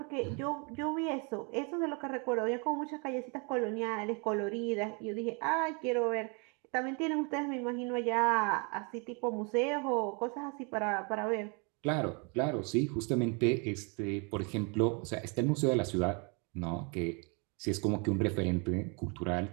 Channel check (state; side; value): quieter; left; 33.8 dB